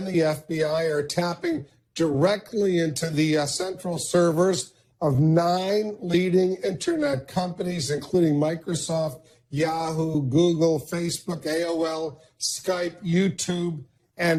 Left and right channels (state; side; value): identical; both; correlation 1.00